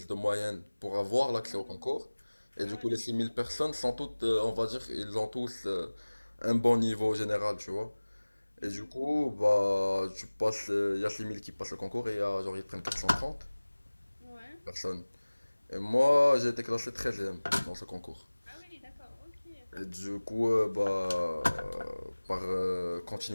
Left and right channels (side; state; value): both; inverted; correlation -1.00